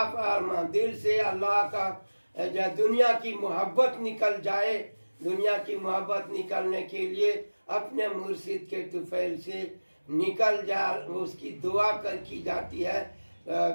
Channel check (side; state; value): both; inverted; correlation -1.00